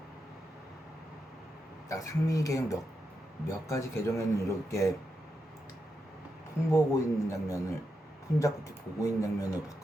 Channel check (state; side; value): normal; both; correlation 0.85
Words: 나 상민이 계정 몇 가지 계정에는 이렇게 폰 보고 있는 장면을, 폰 잡고 이렇게 보고 있는 장면을